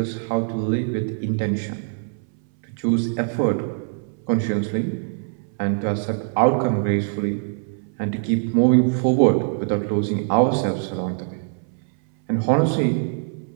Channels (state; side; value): silent; left; 61 dB below the other